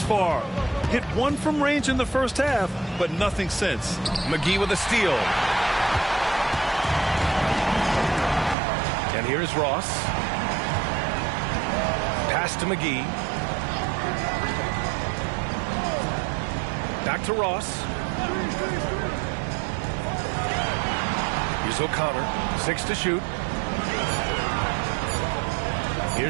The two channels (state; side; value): drops out; left; at 8.6 s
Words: far. Hit one from range in the first half, but nothing since. McGee with a steal. And here's Ross. Pass to McGee. Back to Ross. Here's O'Connor. 6 to shoot.